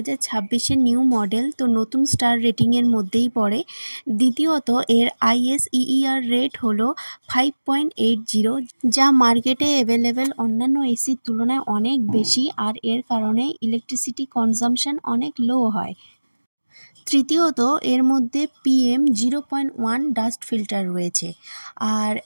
নিউ মডেল, তো নতুন স্টার রেটিংয়ের মধ্যেই পড়ে। দ্বিতীয়ত, এর ISEER রেট হলো 5.80, যা মার্কেটে অ্যাভেলেবেল অন্যান্য এসির তুলনায় অনেক বেশি, আর এর কারণে ইলেকট্রিসিটি কনজাম্পশন অনেক লো হয়। তৃতীয়ত, এর মধ্যে PM0.1 ডাস্ট ফিল্টার রয়েছে। আর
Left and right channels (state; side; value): inverted; both; correlation -1.00